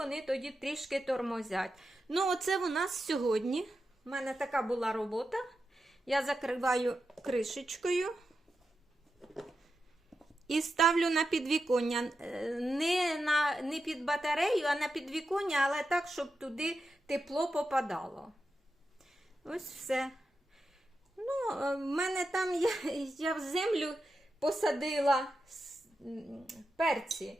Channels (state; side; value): normal; both; correlation 0.89